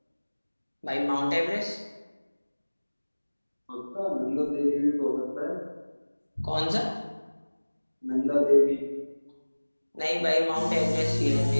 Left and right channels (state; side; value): inverted; both; correlation -1.00